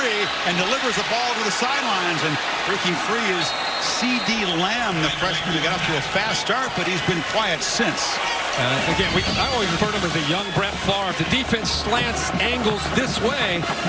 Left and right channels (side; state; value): both; identical; correlation 1.00